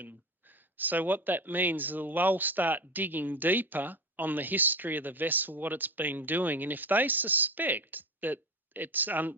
So what that means is they'll start digging deeper on the history of the vessel, what it's been doing. And if they suspect that it's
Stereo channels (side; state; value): both; normal; correlation 0.25